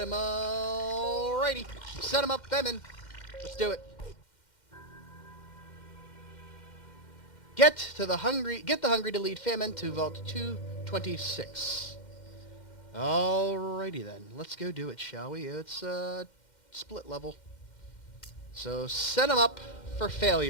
him. Alrighty, set him up, Famine. Let's do it. Get the hungry to lead Famine to Vault 226. Alrighty then, let's go do it, shall we? It's split level. So set him up for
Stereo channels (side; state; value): right; late; 2.1 ms